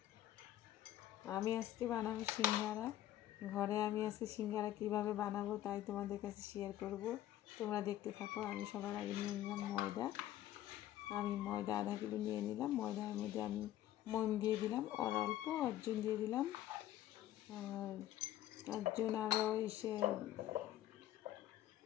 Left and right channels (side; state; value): right; quieter; 13.2 dB